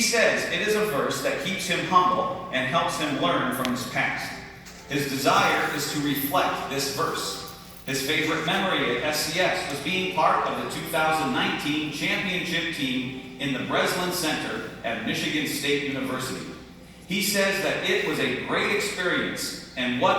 says it is a verse that keeps him humble and helps him learn from his past. His desire is to reflect this verse. His favorite memory at SCS was being part of the 2019 championship team in the Breslin Center at Michigan State University. He says that it was a great experience and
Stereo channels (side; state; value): both; identical; correlation 1.00